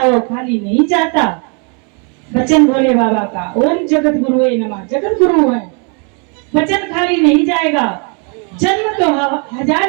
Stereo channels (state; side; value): quieter; left; 37.0 dB